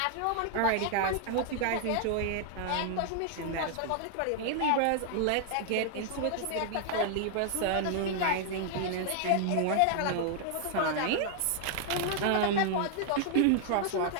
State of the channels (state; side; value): different; both; correlation 0.00